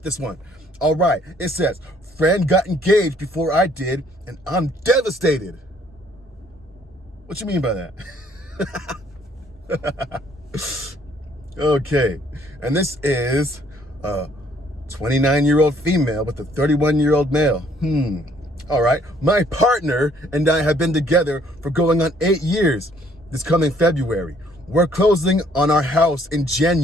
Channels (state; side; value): normal; both; correlation 0.63